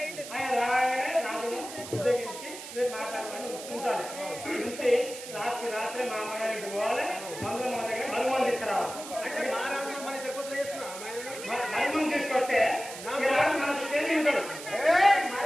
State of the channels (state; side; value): noise; right; hiss, 11 dB below the sound